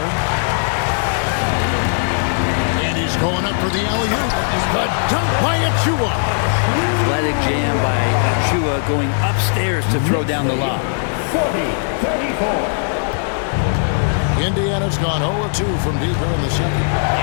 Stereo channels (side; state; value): right; silent; digital silence